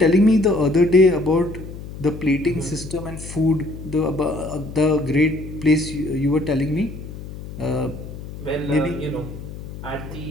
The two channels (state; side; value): noise; left; hum, 11 dB below the sound